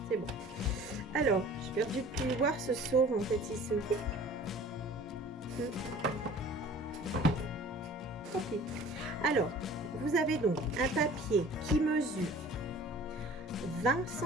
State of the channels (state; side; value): normal; both; correlation 0.46